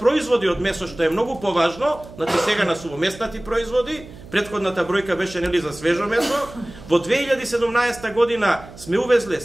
од месо, што е многу поважно, значи сега на сувомеснати производи, претходната бројка беше нели за свежо месо, во 2017 година сме увезле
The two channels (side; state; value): right; noise; hum, 18 dB below the sound